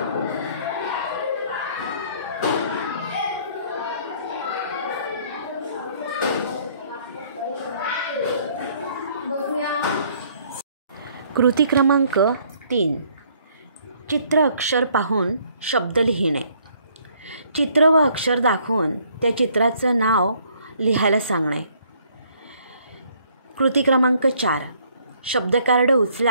कृती क्रमांक 3. चित्र अक्षर पाहून शब्द लिहिणे. चित्र व अक्षर दाखवून त्या चित्राचं नाव लिहायला सांगणे. कृती क्रमांक 4. शब्दकार्ड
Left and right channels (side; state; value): both; inverted; correlation -0.63